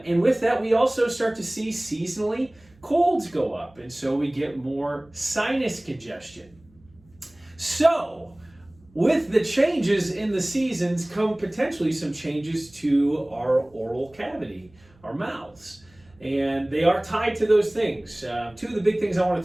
with that, we also start to see seasonally colds go up, and so we get more sinus congestion. So, with the changes in the seasons come potentially some changes to our oral cavity, our mouths. And they are tied to those things. Two of the big things I want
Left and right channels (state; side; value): noise; right; hum, 30 dB below the sound